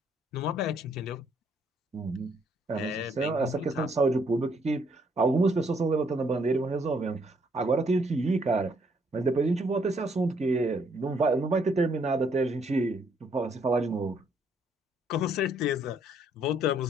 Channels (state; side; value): normal; both; correlation 0.69